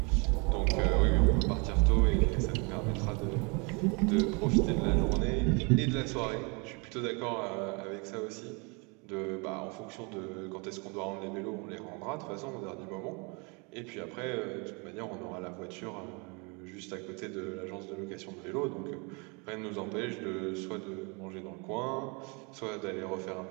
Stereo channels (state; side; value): quieter; left; 31.4 dB